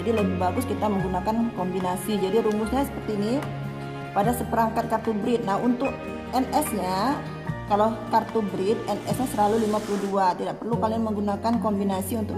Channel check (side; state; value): both; identical; correlation 1.00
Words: lebih bagus kita menggunakan kombinasi. Jadi rumusnya seperti ini. Pada seperangkat kartu breed. Nah, untuk NS-nya, kalau kartu breed NS-nya selalu 52. Tidak perlu kalian menggunakan kombinasi